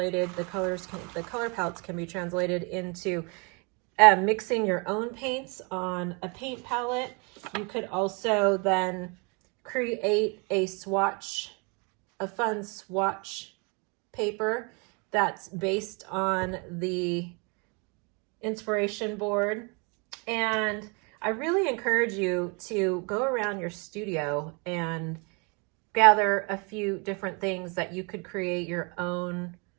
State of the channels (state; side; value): quieter; left; 32.3 dB